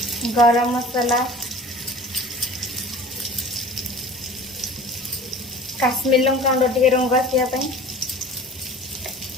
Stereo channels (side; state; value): both; normal; correlation 0.42